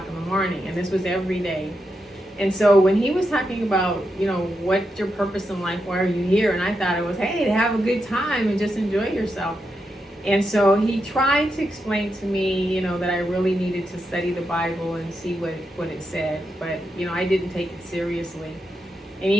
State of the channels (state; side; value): normal; both; correlation 0.85